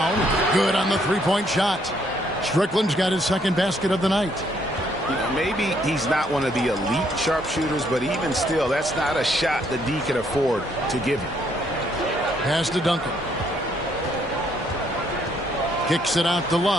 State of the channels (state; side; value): normal; both; correlation 0.69